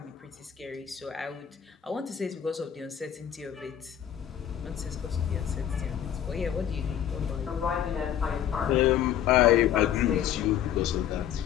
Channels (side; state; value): right; quieter; 10.0 dB